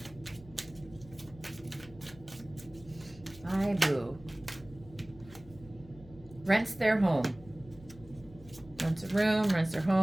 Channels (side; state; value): left; noise; hum, 20 dB below the sound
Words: My boo rents their home. Rents a room, rents their